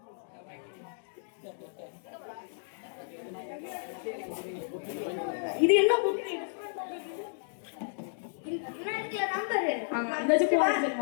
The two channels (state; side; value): silent; right; digital silence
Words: இது என்ன புக்? என்ன இருக்குல நம்பர்? அந்த ஜூஸ்